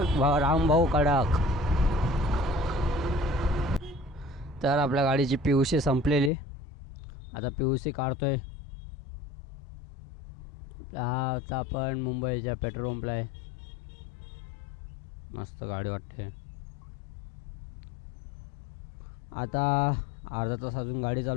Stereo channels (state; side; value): drops out; right; at 6.3 s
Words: रामभाऊ कडक. तर आपल्या गाडीची PUC संपलेली. आता PUC काढतोय. हा आता आपण मुंबईच्या पेट्रोल पंपला आहे. मस्त गाडी वाटते. आता अर्धा तास अजून गाडी